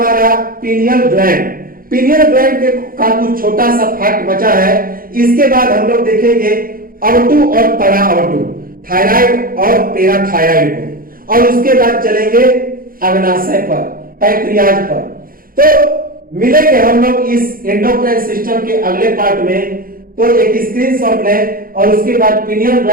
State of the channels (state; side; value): late; left; 0.42 ms